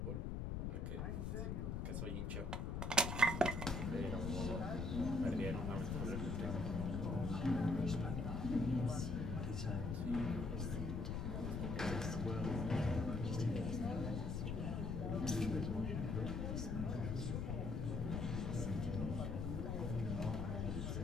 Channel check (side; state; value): left; noise; rumble, 1 dB below the sound